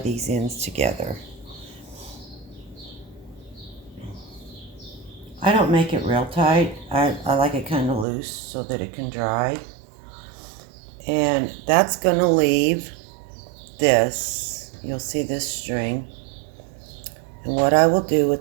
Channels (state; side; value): drops out; left; at 8.1 s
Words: these ends together. I don't make it real tight. I like it kind of loose so that it can dry. And that's going to leave this. You'll see this string. And what I will do